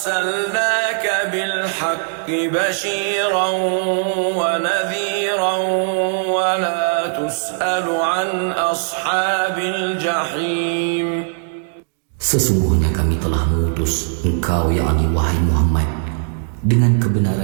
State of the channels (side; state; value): left; silent; digital silence